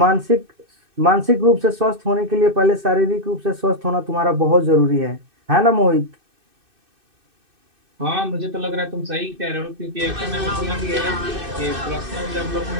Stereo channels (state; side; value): late; left; 2.6 ms